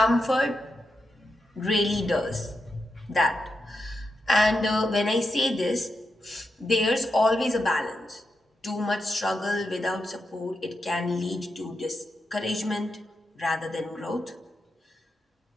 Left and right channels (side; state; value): both; normal; correlation 0.87